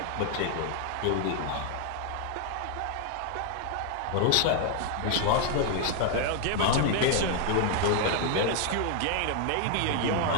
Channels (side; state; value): both; different; correlation 0.00